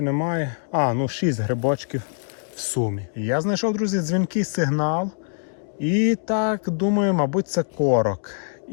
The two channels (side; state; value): right; silent; digital silence